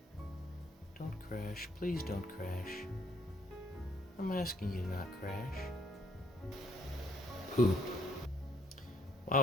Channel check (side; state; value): both; normal; correlation 0.67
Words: Don't crash. Please don't crash. I'm asking you to not crash. Poop.